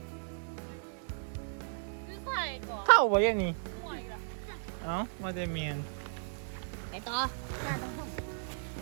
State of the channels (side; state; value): left; silent; digital silence